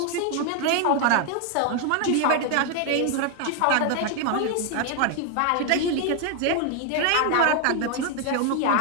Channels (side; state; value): both; different; correlation 0.01